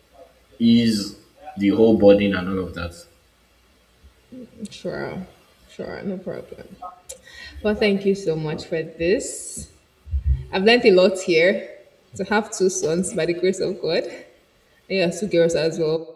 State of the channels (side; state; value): both; identical; correlation 1.00